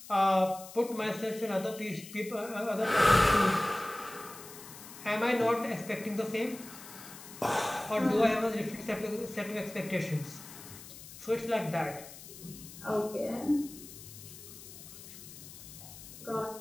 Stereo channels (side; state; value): left; noise; hiss, 15 dB below the sound